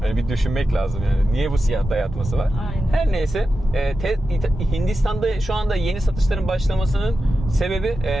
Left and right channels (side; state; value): both; normal; correlation 0.91